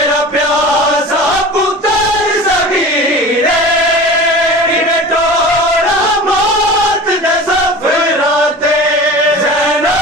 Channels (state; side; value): normal; both; correlation 0.36